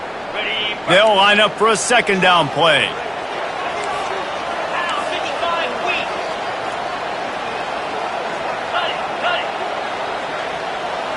They'll line up for a 2nd down play.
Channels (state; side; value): identical; both; correlation 1.00